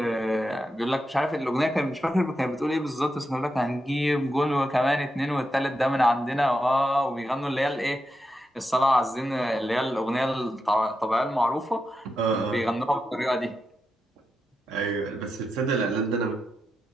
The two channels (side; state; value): both; normal; correlation 0.87